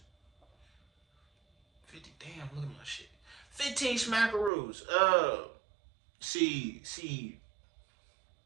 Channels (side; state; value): left; drops out; at 4.5 s